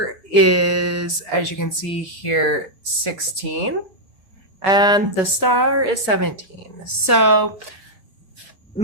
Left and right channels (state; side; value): normal; both; correlation -0.05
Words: is, as you can see here, 16. And the star is 17. So